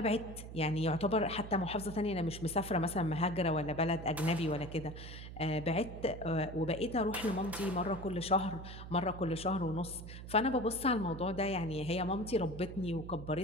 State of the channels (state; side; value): noise; right; hum, 11 dB below the sound